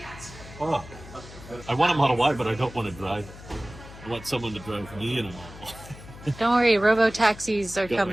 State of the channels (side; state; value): left; noise; hum, 16 dB below the sound